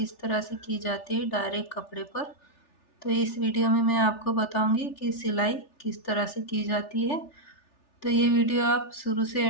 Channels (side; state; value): right; late; 3.4 ms